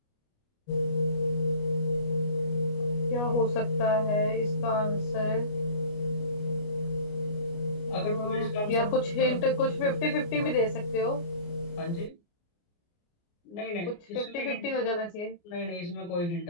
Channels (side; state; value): right; late; 29 ms